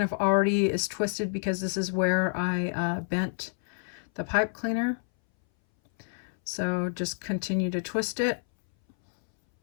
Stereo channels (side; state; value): right; silent; 59 dB below the other